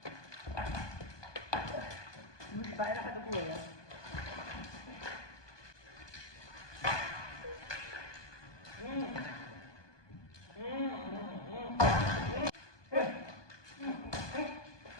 बाहिर खाएको के हो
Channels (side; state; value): right; late; 1.2 ms